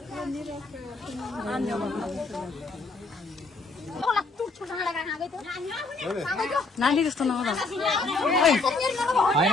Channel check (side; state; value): right; quieter; 3.6 dB